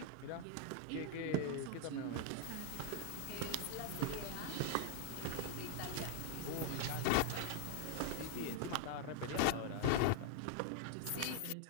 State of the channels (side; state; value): both; different; correlation 0.00